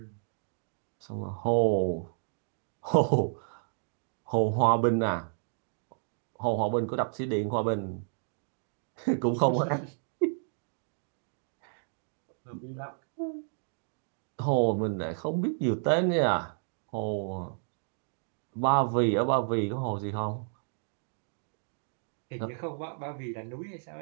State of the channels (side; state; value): left; silent; digital silence